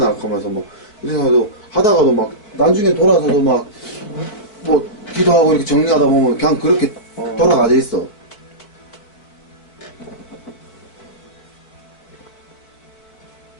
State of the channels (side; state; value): right; late; 4.6 ms